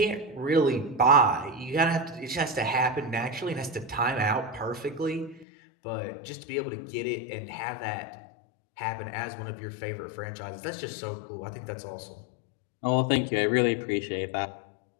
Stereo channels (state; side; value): drops out; right; at 5.5 s